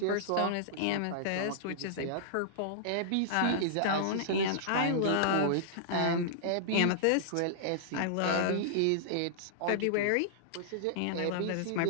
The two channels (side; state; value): both; different; correlation -0.02